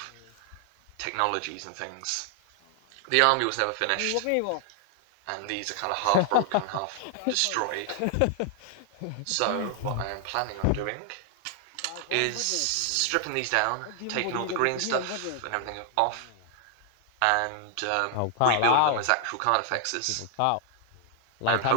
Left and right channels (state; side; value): different; both; correlation 0.00